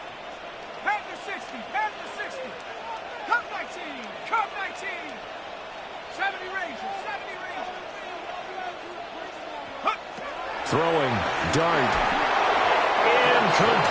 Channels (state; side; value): identical; both; correlation 1.00